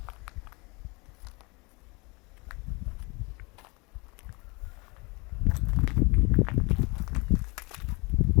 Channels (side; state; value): right; quieter; 27.5 dB